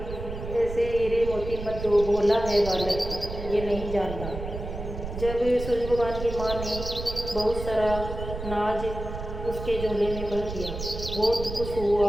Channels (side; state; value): right; noise; rumble, 8 dB below the sound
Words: ऐसे हीरे मोती मत दो, भोला है बालक, ये नहीं जानता। जब सूरज भगवान की माँ ने बहुत सारा नाज उसके झोले में भर दिया, बहुत खुश हुआ